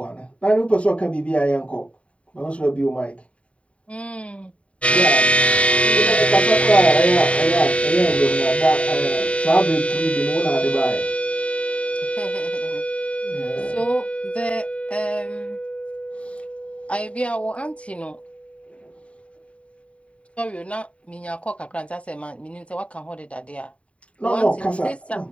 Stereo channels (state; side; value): late; right; 0.063 ms